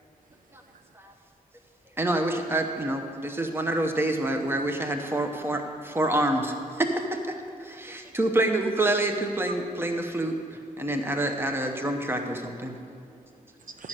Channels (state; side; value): normal; both; correlation 0.64